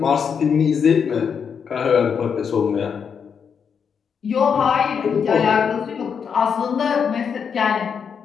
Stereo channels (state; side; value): quieter; right; 6.8 dB